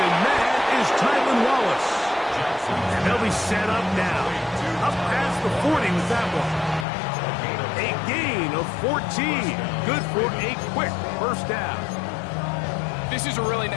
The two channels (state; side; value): drops out; right; at 6.9 s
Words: man is Tylan Wallace. And they'll be set up now. Up past the 40 with that one. A gain of 14. Good for a quick first down. This is a really